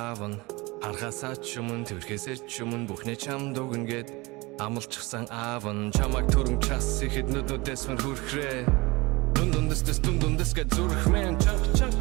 нь харахасаа ч өмнө тэрхээсээ ч өмнө бүхнээ чамд өгнө гэд амлчихсан аав нь чамайг түрэн час ихэд нүднүүдээс мөр хүрхрээ дундундэс гэж зүрхмэн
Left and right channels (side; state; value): left; quieter; 23.7 dB